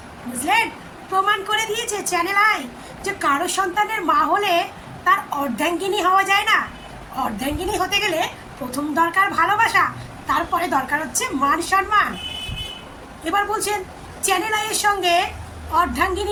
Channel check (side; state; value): both; identical; correlation 1.00